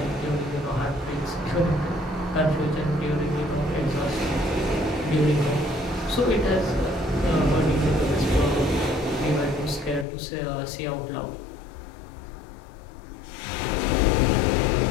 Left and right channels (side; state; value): right; drops out; at 10.1 s